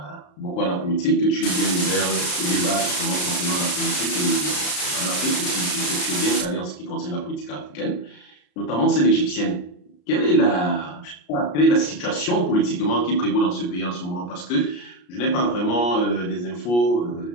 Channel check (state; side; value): late; right; 33 ms